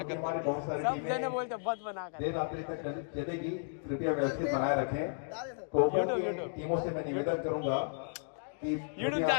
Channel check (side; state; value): right; silent; digital silence